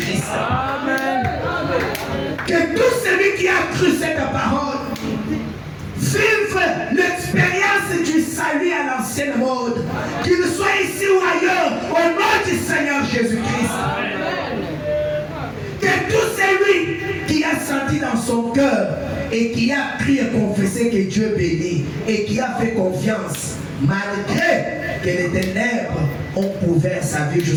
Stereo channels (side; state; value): both; identical; correlation 1.00